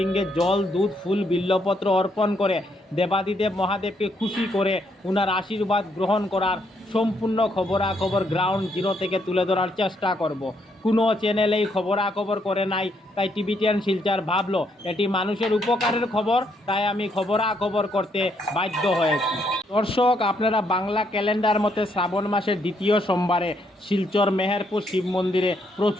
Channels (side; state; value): both; normal; correlation 0.74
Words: জল, দুধ, ফুল, বিল্লপত্র অর্পণ করে দেবাদিদেব মহাদেবকে খুশি করে ওনার আশীর্বাদ গ্রহণ করার সম্পূর্ণ খবরাখবর গ্রাউন্ড জিরো থেকে তুলে ধরার চেষ্টা করব। কোনো চ্যানেলেই খবরাখবর করে নাই, তাই টিভি10 শিলচর ভাবলো এটি মানুষের উপকারের খবর, তাই আমি খবরাখবর করতে বাধ্য হয়েছি। দর্শক, আপনারা বাংলা ক্যালেন্ডার মতে শ্রাবণ মাসের দ্বিতীয় সোমবারে শিলচর মেহেরপুর শিব মন্দিরে